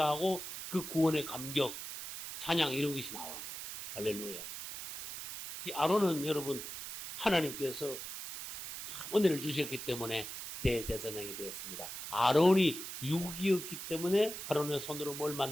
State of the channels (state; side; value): noise; right; hiss, 8 dB below the sound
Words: 그 구원의 감격, 찬양 이런 것이 나오는 거예요. 할렐루야. 이 아론은 여러분, 하나님께서 은혜를 주셨기 때문에 대제사장이 되었습니다. 아론이 육이었기 때문에 아론의 손으로 뭘